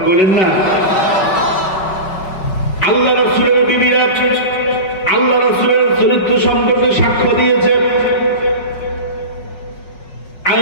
করেন না? আল্লাহ রাসূলের বিবিরা আল্লাহ রাসূলের চরিত্র সম্পর্কে সাক্ষ্য দিয়েছে।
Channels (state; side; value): late; right; 5.4 ms